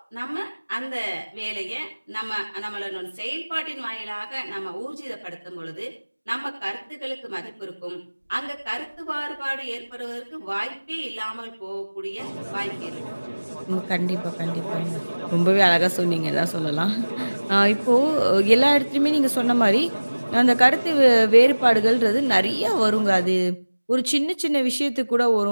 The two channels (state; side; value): inverted; both; correlation -1.00